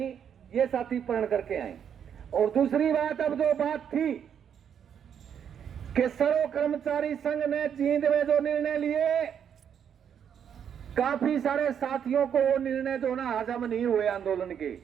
ये साथी प्रण करके आए। और दूसरी बात, अब जो बात थी कि सर्व कर्मचारी संघ ने जींद में जो निर्णय लिए, काफी सारे साथियों को वो निर्णय जो ना हजम नहीं हुए आंदोलन के,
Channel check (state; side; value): quieter; left; 8.3 dB